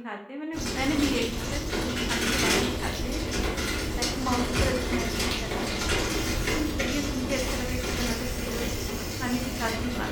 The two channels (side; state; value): both; identical; correlation 1.00